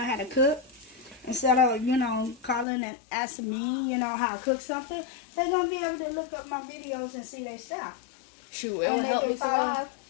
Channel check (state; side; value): drops out; right; at 2.7 s